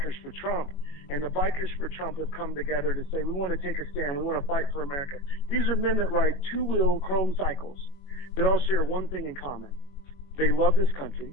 for Trump, and the Bikers for Trump have come together to say, we want to take a stand, we want to fight for America. These are men that ride two-wheel chrome cycles that all share one thing in common. They love this country,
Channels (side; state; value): right; late; 21 ms